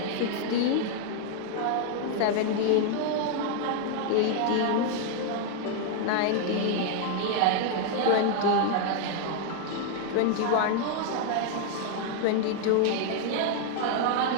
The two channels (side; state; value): both; different; correlation 0.00